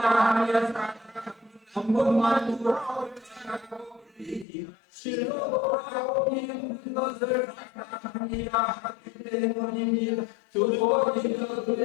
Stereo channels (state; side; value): drops out; right; at 4.5 s